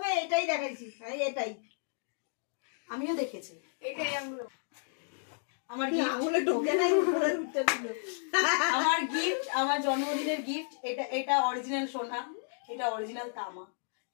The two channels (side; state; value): right; silent; digital silence